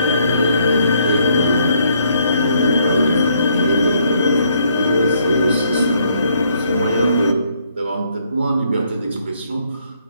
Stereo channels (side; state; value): both; inverted; correlation -0.69